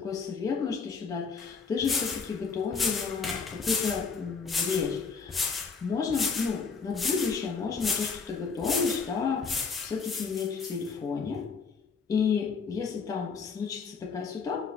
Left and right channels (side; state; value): right; quieter; 5.2 dB